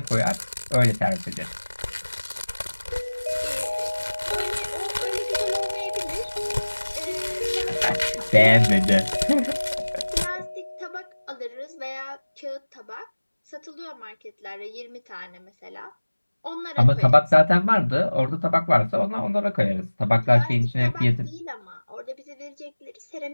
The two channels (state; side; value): inverted; both; correlation -1.00